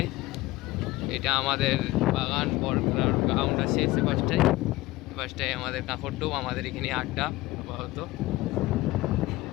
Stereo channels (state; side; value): quieter; right; 18.9 dB